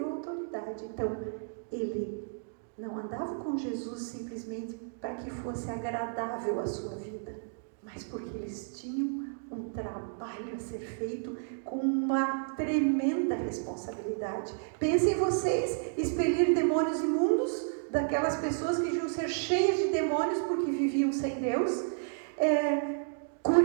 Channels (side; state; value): left; silent; digital silence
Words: autoridade. Então, ele não andava com Jesus simplesmente para que fosse agradável a sua vida, mas porque eles tinham um trabalho a ser feito com uma tremenda responsabilidade. Pensem vocês, expelir demônios imundos daquelas pessoas que deviam ser cheias de demônios porque viviam sem Deus,